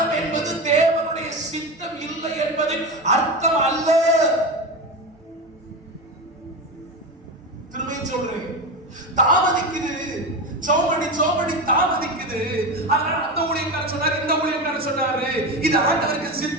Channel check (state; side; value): normal; both; correlation 0.21